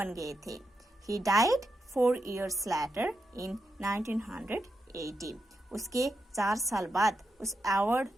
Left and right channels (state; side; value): normal; both; correlation 0.85